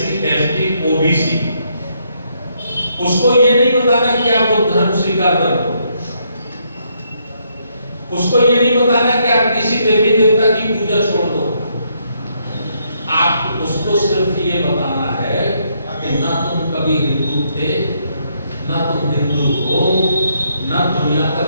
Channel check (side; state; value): both; inverted; correlation -0.74